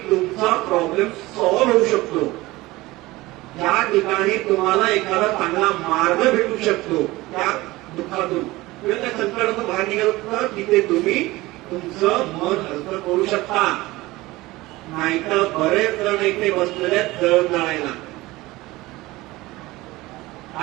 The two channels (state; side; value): quieter; left; 19.6 dB